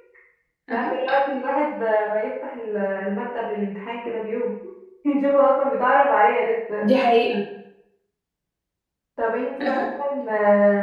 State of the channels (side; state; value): both; identical; correlation 1.00